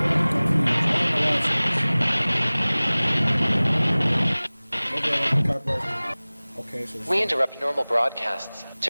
Okay, so we interrupt normal broadcasts to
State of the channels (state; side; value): inverted; both; correlation -1.00